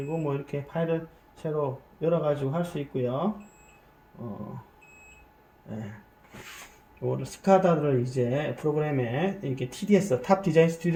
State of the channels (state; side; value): identical; both; correlation 1.00